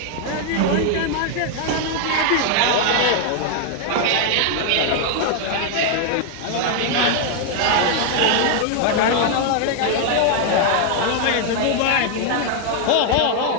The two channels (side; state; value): both; different; correlation 0.00